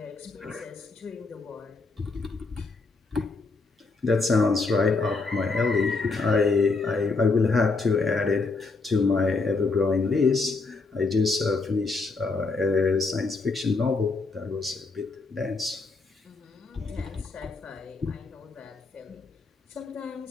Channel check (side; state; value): right; quieter; 3.9 dB